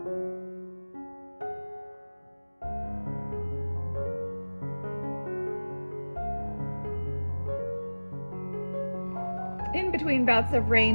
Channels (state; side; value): inverted; both; correlation -1.00